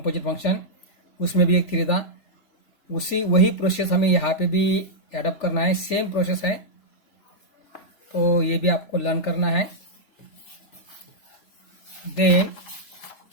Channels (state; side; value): late; right; 3.3 ms